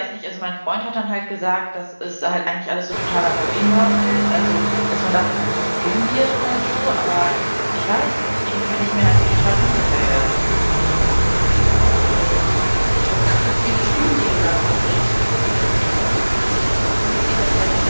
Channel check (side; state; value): both; inverted; correlation -1.00